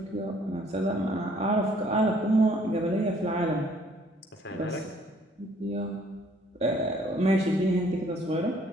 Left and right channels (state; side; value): normal; both; correlation 0.61